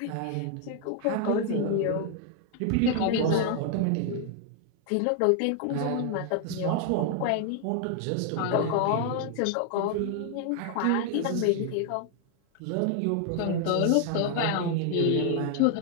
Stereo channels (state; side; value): different; both; correlation 0.00